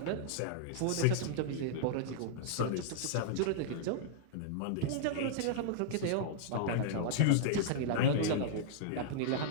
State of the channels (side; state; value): both; different; correlation -0.01